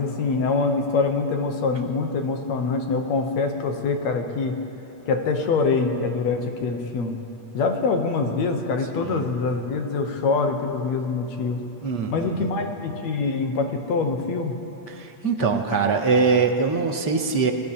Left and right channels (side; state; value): right; late; 8.6 ms